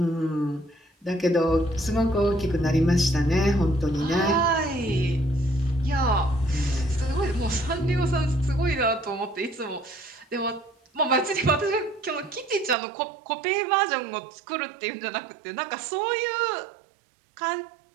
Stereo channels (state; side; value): drops out; left; at 12.8 s